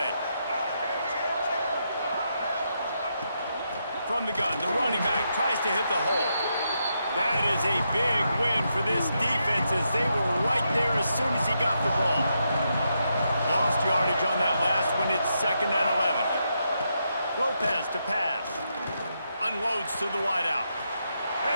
From the gun, the running back tries to hit the hole. That is a big win for this defense as they were right there as soon as he got the ball. Lost yardage on that last one. It's 2nd and 11. Lopez to pass. Unloads to the wideout.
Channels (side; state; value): both; inverted; correlation -0.82